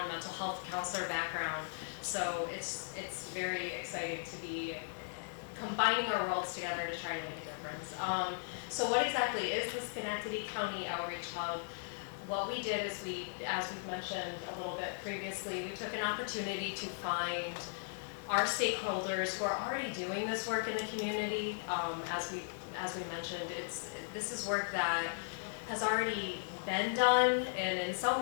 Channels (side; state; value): right; silent; digital silence